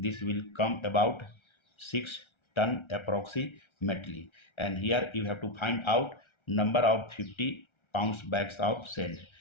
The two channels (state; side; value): late; right; 1.3 ms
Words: will come about 6 ton approximately. And here you have to find out number of 50 pounds bags of sand.